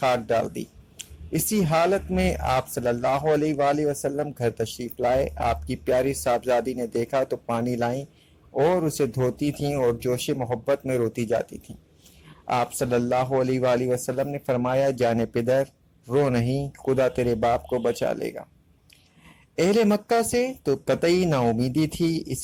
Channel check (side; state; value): both; identical; correlation 1.00